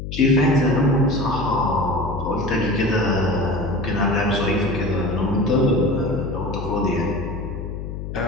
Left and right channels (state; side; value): noise; left; hum, 7 dB below the sound